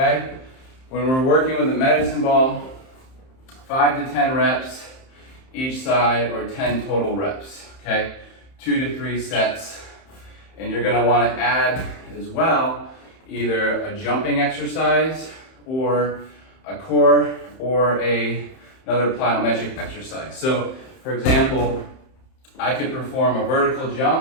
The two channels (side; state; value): right; late; 31 ms